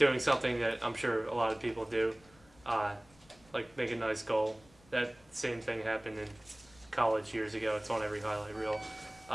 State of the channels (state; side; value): noise; left; rumble, 27 dB below the sound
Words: something that I'm sure a lot of people do, like make a nice goal. That same thing happened in college years ago. It's on every highlight reel.